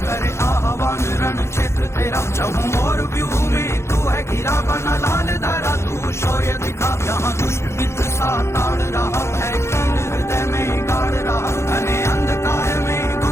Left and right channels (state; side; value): late; right; 0.13 ms